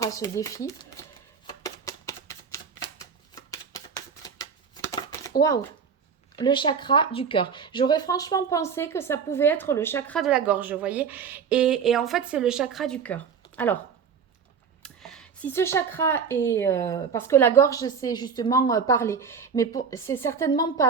à ce défi? Waouh! Le chakra du cœur. J'aurais franchement pensé que ça pouvait être le chakra de la gorge, vous voyez. Et en fait, c'est le chakra du cœur. Alors, si ce chakra est... parce que la gorge, c'est justement parler. Mais c'est certainement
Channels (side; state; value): left; quieter; 6.4 dB